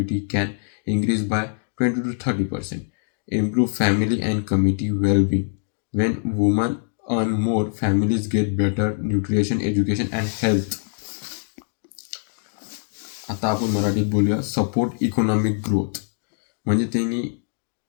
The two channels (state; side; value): silent; right; digital silence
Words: can increase by 20 to 30%. Improve family and community well-being. When women earn more, families get better nutrition, education and health. आता आपण मराठीत बोलूया सपोर्ट इकॉनॉमिक ग्रोथ. म्हणजे त्यांनी